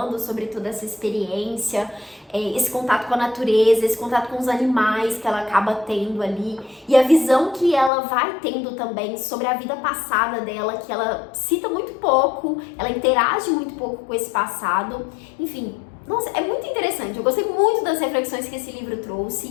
sobre toda essa experiência, esse contato com a natureza, esse contato com os animais que ela acaba tendo ali, e a visão que ela vai tendo também sobre a vida passada dela, que ela cita muito pouco, ela interage muito pouco com esse passado, enfim. Nossa, é muito interessante. Eu gostei muito das reflexões que esse livro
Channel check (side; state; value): right; drops out; at 7.9 s